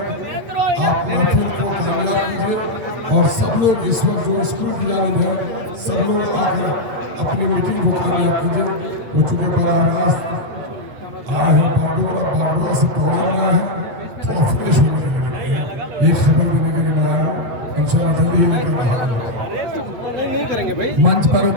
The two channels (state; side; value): late; left; 8.4 ms